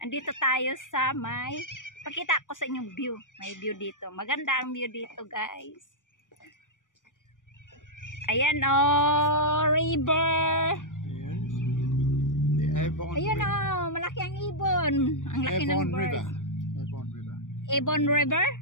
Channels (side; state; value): right; late; 0.87 ms